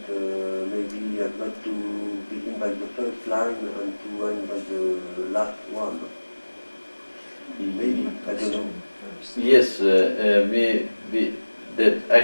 maybe he has got to begin by the first line and to end by the last one. Maybe, I don't know. Yes, that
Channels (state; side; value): inverted; both; correlation -1.00